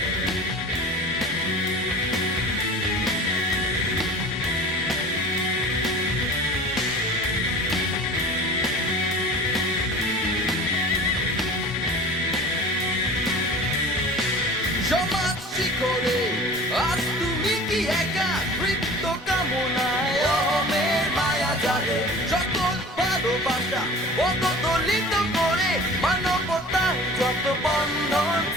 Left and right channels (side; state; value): both; normal; correlation 0.40